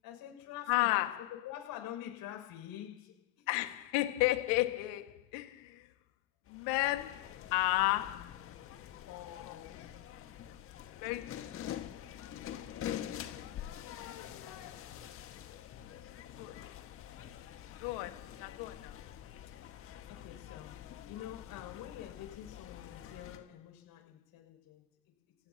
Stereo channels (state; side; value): quieter; right; 16.0 dB